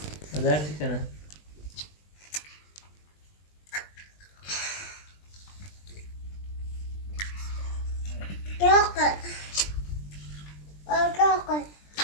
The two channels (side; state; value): right; late; 20 ms